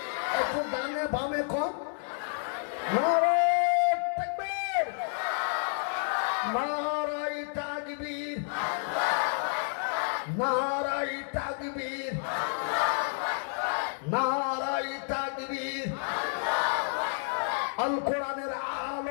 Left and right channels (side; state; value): right; silent; 58 dB below the other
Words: একটু ডানে বামে কোন। নারে তাকবীর, নারায়ে তাকবীর, নারায়ে তাকবীর, নারায়ে তাকবীর। আল কোরআনের